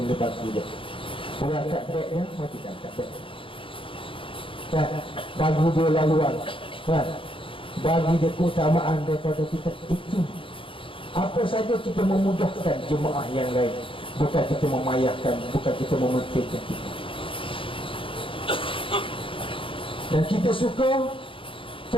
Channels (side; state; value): right; late; 0.25 ms